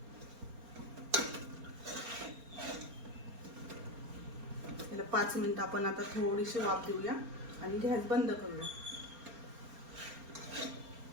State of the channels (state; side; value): late; left; 4.3 ms